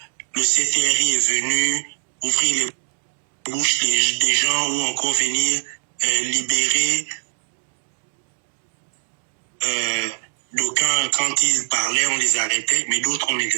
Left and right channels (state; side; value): silent; left; digital silence